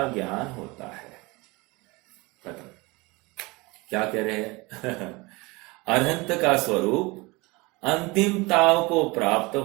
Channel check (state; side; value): quieter; left; 24.5 dB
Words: ज्ञान होता है। खत्म। क्या कह रहे हैं? अनंत का स्वरूप अंतिमताओं को प्राप्त